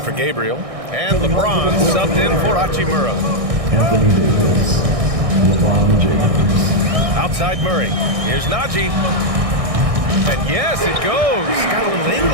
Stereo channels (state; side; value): late; left; 1.6 ms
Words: for Gabriel. And LeBron subbed in for Hachimura. Anthony Davis, LeBron James. Outside Murray. Here's Najee. And yes, it goes. Got a little